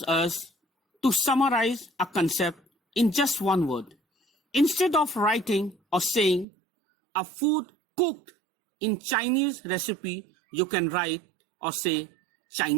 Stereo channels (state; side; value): drops out; left; at 6.5 s